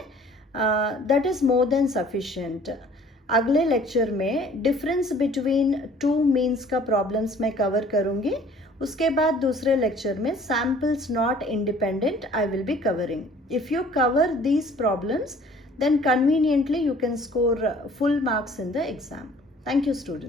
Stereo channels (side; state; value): both; normal; correlation 0.53